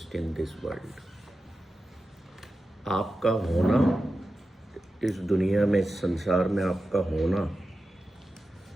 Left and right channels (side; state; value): both; normal; correlation 0.92